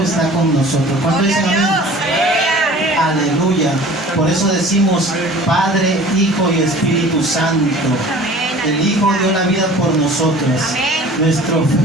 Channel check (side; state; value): both; normal; correlation 0.45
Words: está con nosotros. ¿Cuánto dicen amén? Aleluya. Por eso decimos Padre, Hijo y Espíritu Santo. El Hijo dio la vida por nosotros.